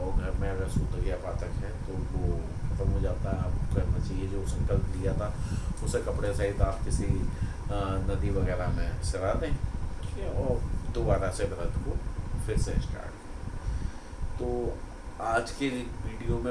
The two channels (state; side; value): identical; both; correlation 1.00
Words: घर में अगर सूतक या पातक है तो वो खत्म हो जाता है। आपको करना चाहिए जो संकल्प लिया था उसे कपड़े सहित आप किसी नदी वगैरह में सरा दें, ठीक है, और दोबारा से व्रत को फिर से स्टार्ट करें। तो आज के वीडियो